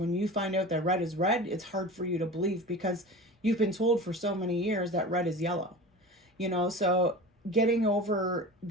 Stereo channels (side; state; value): both; normal; correlation 0.34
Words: you find out that red is red, it's hard for you to believe because you've been told for so many years that red is yellow. You know, so getting over